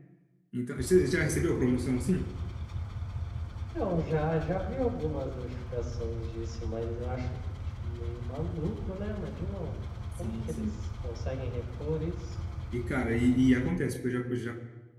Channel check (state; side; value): identical; both; correlation 1.00